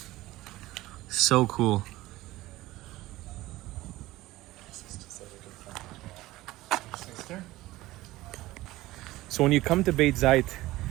So cool. So when you come to Beit Zait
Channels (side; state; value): left; quieter; 17.6 dB